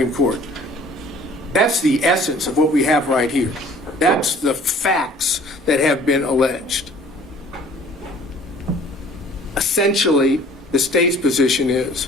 Court. That's the essence of what we have right here. That's the facts that have been alleged. Essentially, the state's position is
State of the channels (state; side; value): normal; both; correlation 0.52